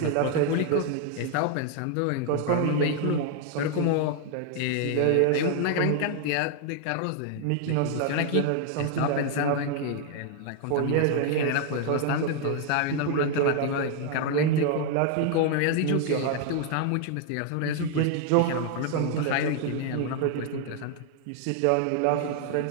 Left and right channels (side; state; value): both; different; correlation 0.00